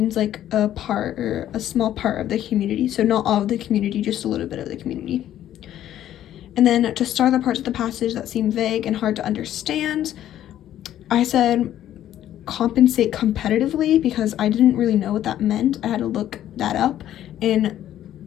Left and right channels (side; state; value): right; quieter; 11.9 dB